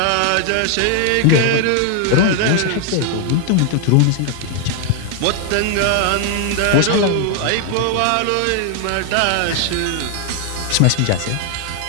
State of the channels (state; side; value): different; both; correlation 0.00